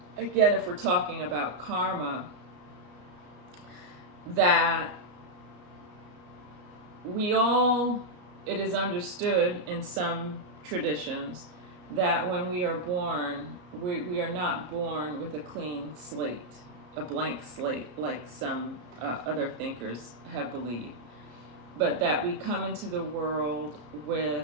again, if we're talking about karma, that it is understood in some traditions that when we are born, we are not born with a clean slate, a blank slate, like some other thinkers have believed, but that we come into the world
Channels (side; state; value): left; late; 33 ms